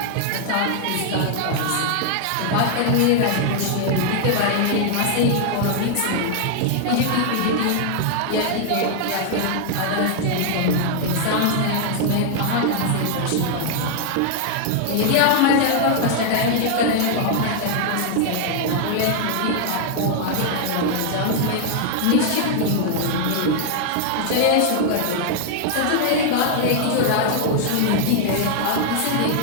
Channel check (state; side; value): different; both; correlation 0.00